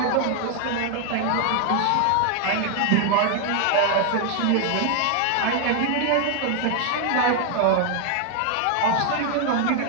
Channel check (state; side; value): different; both; correlation 0.00